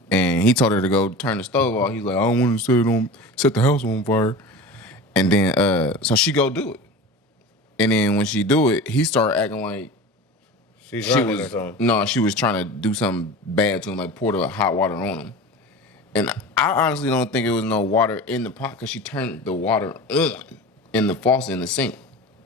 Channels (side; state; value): both; normal; correlation 0.33